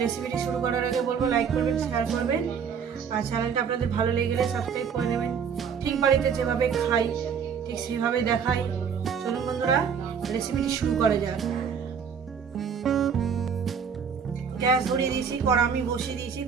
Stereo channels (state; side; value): quieter; left; 6.9 dB